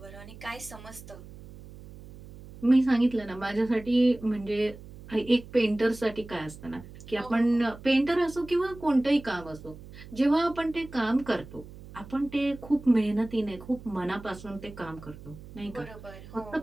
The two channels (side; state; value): right; noise; hum, 17 dB below the sound